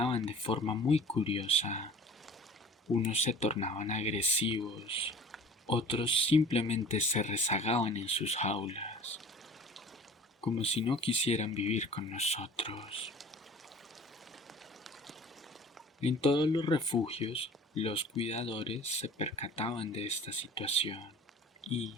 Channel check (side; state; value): both; normal; correlation 0.44